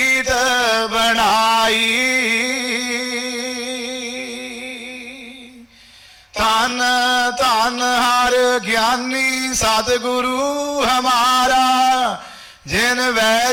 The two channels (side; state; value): both; identical; correlation 1.00